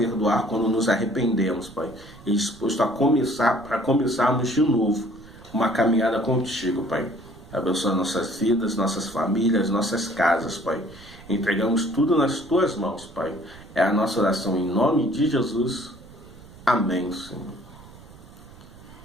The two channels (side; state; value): right; noise; rumble, 20 dB below the sound